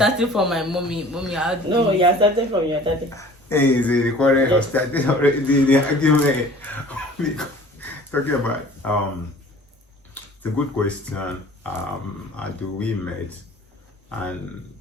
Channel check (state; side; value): normal; both; correlation 0.48